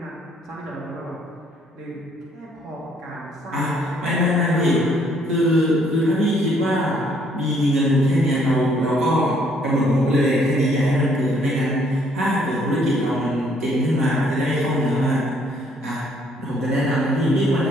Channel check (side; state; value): both; normal; correlation 0.66